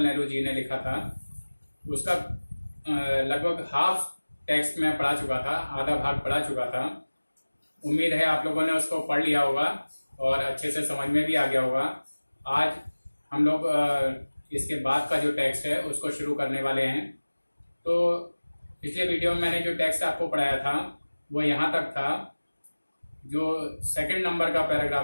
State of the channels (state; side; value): inverted; both; correlation -1.00